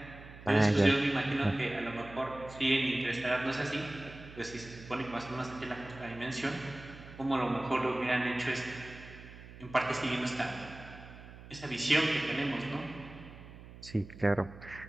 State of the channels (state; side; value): noise; right; hum, 16 dB below the sound